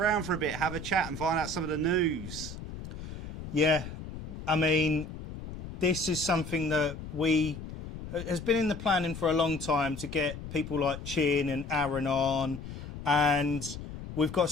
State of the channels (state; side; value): noise; left; rumble, 10 dB below the sound